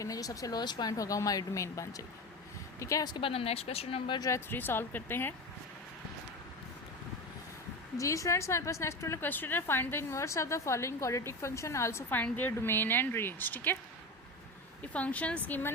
है। जो सबसे लोएस्ट पॉइंट होगा हमारी डोमेन बन जाएगी। ठीक है, उसके बाद हम नेक्स्ट क्वेश्चन नंबर जो है 3 सॉल्व करते हैं। जी स्टूडेंट्स, हमारे पास नेक्स्ट वाला क्वेश्चन है, find the inverse of the following quadratic function, also find their domain and range. ठीक है, ये फंक्शंस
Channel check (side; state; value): both; normal; correlation 0.24